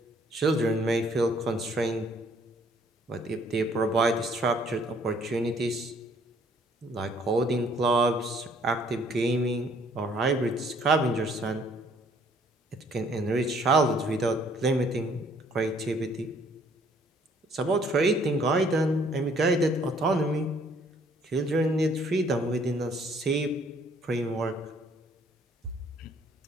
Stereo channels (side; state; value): both; normal; correlation 0.62